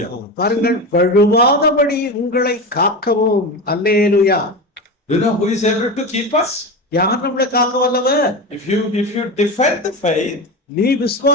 பாருங்கள், வழுவாதபடி உங்களை காக்கவும். அல்லேலூயா. You know who is able to keep us? யார் நம்மளை காக்க வல்லவர்? If you defend the faith நீ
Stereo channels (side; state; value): both; normal; correlation 0.22